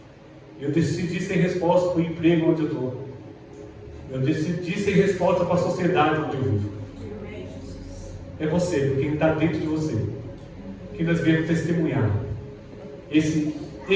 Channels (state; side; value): identical; both; correlation 1.00